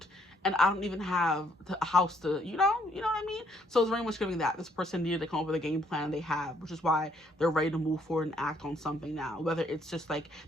And I don't even have a house to, you know what I mean? So it's very much giving that. This person needed to come up with a game plan they have, which is why they're ready to move forward and act on something now. Whether it's just like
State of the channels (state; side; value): normal; both; correlation 0.68